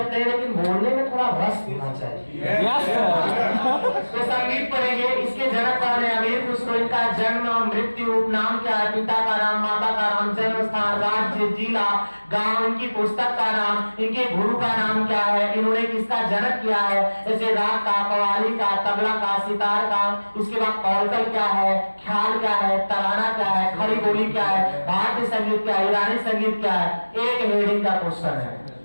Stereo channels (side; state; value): both; inverted; correlation -1.00